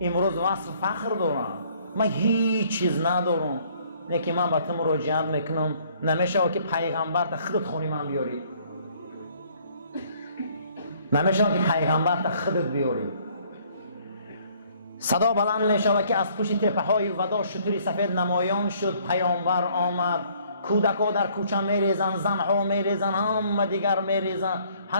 امروز وصف فخر دارن، من هیچ چیز ندارم، لیکن من به تو مراجعت میکنم نمیشه که پیغمبر تا خودت خونی من بیاری، نمیشه که پیغمبر تا خودت بیاری. صدا بلند میشه که از پشت تپه های ودا شتری سفید نمایان شد، پیامبر آمد، کودکا در کوچه میریزن، زنها میریزن، همه دیگر میریزن،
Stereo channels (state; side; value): inverted; both; correlation -0.61